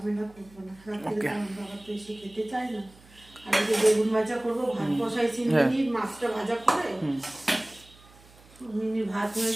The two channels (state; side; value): noise; right; hum, 25 dB below the sound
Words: করবো না, রাত্রিরে আমার বাবা তো এসে খেতে চায় না। আর এই যে বেগুন ভাজা করবো, ভাত বসাইছি মিনিট, মাছটা ভাজা করে মিনিট ভাত হয়ে